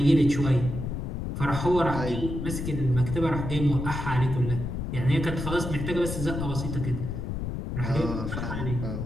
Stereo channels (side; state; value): left; noise; rumble, 4 dB below the sound